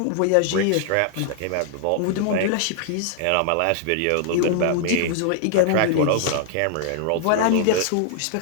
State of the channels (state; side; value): different; both; correlation 0.00